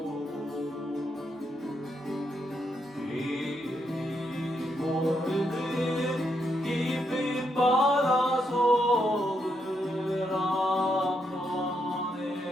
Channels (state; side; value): normal; both; correlation 0.79